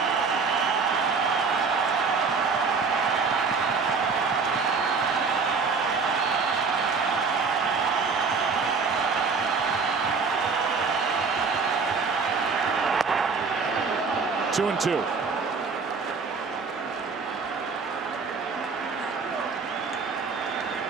Two and two.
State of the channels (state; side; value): quieter; left; 5.0 dB